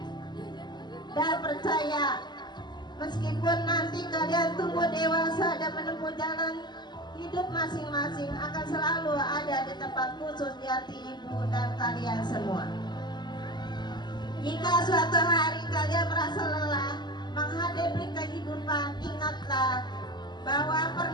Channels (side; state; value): right; late; 0.21 ms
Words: Dan percaya, meskipun nanti kalian tumbuh dewasa dan menempuh jalan hidup masing-masing, akan selalu ada di tempat khusus di hati ibu dan kalian semua. Jika suatu hari kalian merasa lelah menghadapi kehidupan, ingatlah bahwa